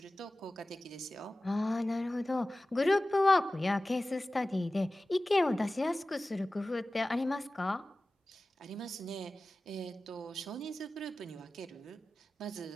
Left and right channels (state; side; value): normal; both; correlation 0.96